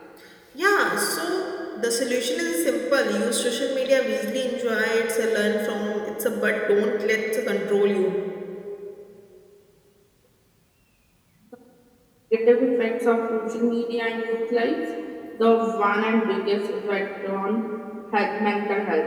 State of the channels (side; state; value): both; identical; correlation 1.00